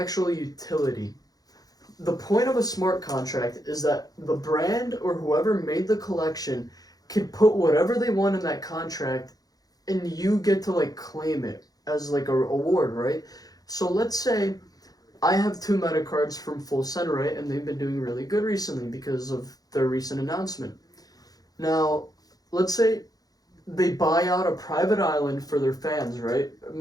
utility. The point of a smart contract is that the brand or whoever made the collection can put whatever they want in that contract and you get to like claim it as like a award, right? So let's say I have 2 meta cards from Full Send, right? And they've been doing really good recently because of their recent announcement. Now, let's say they buy out a private island for their fans, right?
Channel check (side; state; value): right; late; 0.18 ms